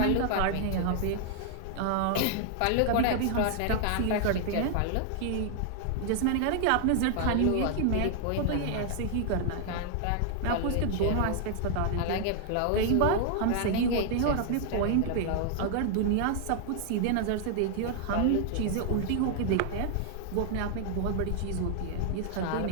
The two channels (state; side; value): different; both; correlation 0.00